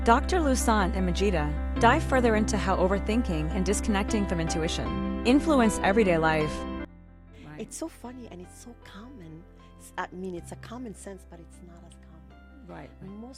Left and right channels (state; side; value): identical; both; correlation 1.00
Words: Dr. Louissaint and Majida dive further into how overthinking and disconnecting from intuition influence everyday life. Right. It's so funny and it's so common. I mean, it's a common sense, but it's not as common. Right.